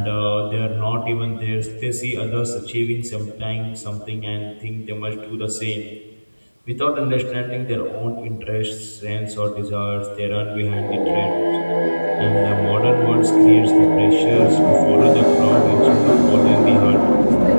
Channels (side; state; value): both; inverted; correlation -1.00